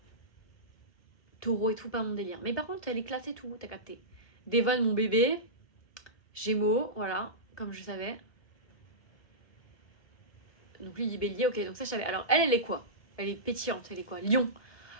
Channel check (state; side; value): late; right; 1.2 ms